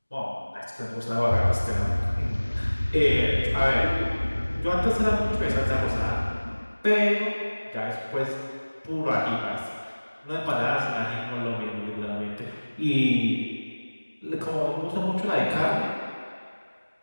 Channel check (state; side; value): inverted; both; correlation -1.00